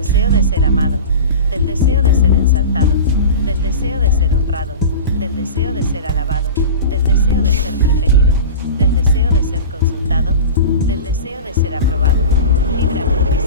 de ser amado, del deseo de ser ensalzado, del deseo de ser honrado, del deseo de ser alabado, del deseo de ser preferido, del deseo de ser consultado, del deseo de ser aprobado. Líbrame,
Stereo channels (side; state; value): both; inverted; correlation -0.31